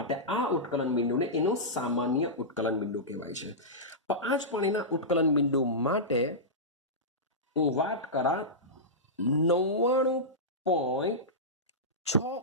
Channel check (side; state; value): both; normal; correlation -0.14